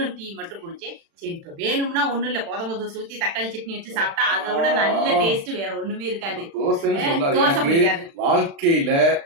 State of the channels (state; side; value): late; left; 36 ms